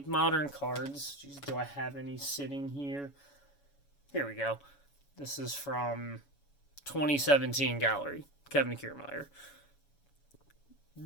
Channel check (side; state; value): right; late; 7.1 ms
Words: modern cards, geez, do I have any sitting here? Here we go. This is from 2017 Gallery. Kevin Kiermaier.